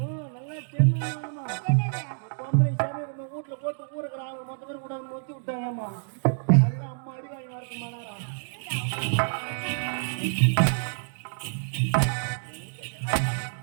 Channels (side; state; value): left; silent; digital silence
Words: பொம்பளை சாமி வீட்டுல போட்டு ஊருக்குறாங்க மொத்த பேர் கூட மொத்தி விட்டாங்கம்மா. அதுதான் அம்மா அடி வாங்கி வரக்கு மாட்டாரா.